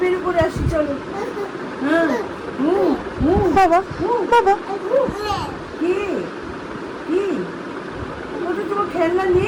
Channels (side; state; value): both; identical; correlation 1.00